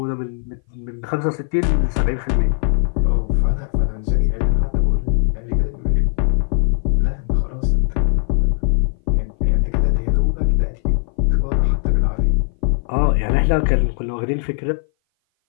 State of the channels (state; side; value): silent; right; 59 dB below the other